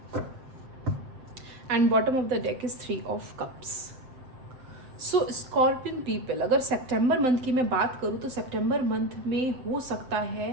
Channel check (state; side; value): late; left; 7.7 ms